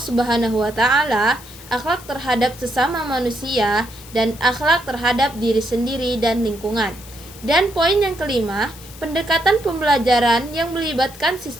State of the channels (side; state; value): left; noise; hiss, 18 dB below the sound